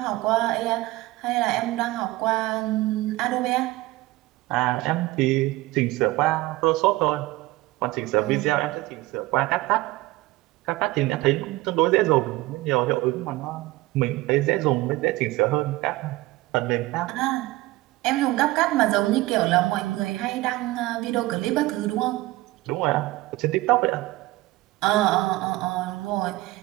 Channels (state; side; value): quieter; left; 19.1 dB